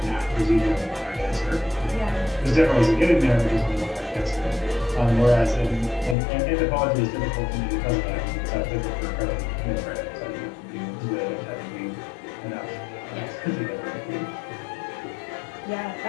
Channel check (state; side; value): drops out; right; at 6.2 s